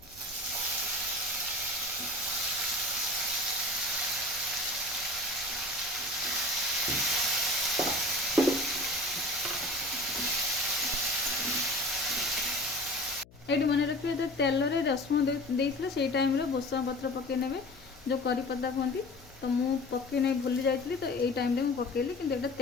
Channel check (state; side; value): noise; left; hum, 24 dB below the sound